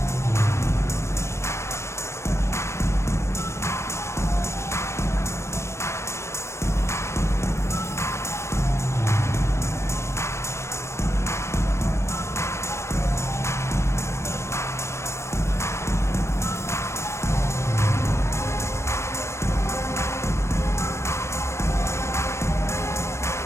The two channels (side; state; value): right; late; 0.13 ms